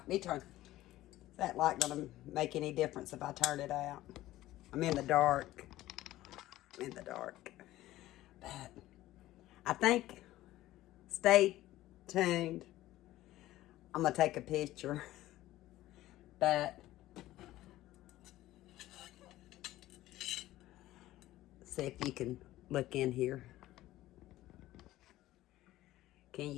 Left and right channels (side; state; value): right; quieter; 15.6 dB